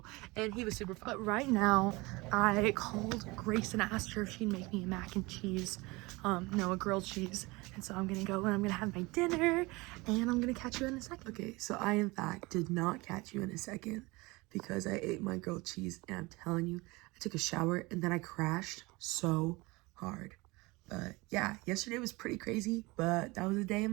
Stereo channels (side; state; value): left; quieter; 23.5 dB